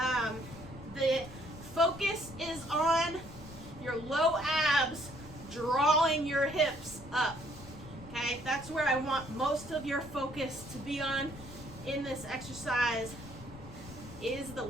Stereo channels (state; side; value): noise; left; rumble, 17 dB below the sound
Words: The focus is on your low abs drawing your hips up. Okay, that's where I want most of your focus to be on in this exercise, is the